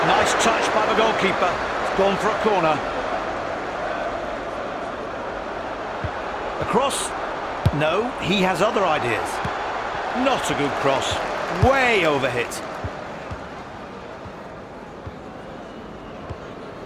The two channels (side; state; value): both; identical; correlation 1.00